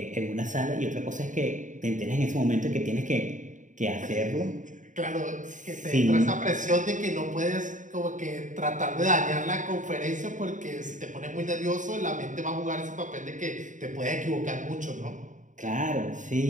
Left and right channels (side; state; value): left; late; 0.36 ms